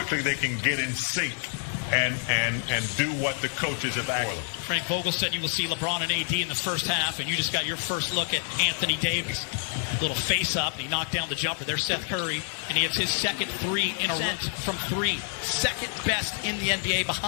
they can get in sync and do what the coaches have asked. Frank Vogel said you will see LeBron and AD in the first half, and you just got your first look at Anthony Davis. Little face-up, and he knocked down the jumper. There's Seth Curry, and he hits his second three in a row from three. Second best in the NBA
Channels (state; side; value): silent; right; 60 dB below the other